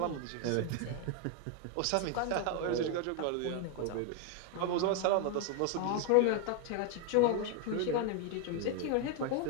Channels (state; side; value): different; both; correlation 0.01